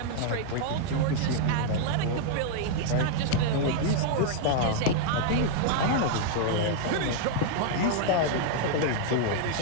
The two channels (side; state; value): both; different; correlation -0.01